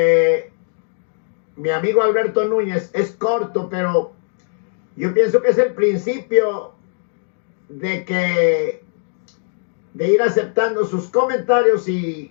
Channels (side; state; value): right; silent; digital silence